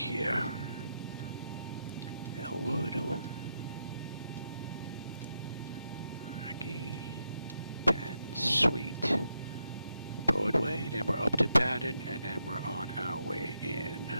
Elwood, Rocky, Penn, Sweet, Broadway, then we're up to Patton, and then we're on our way in.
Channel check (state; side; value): inverted; both; correlation -0.83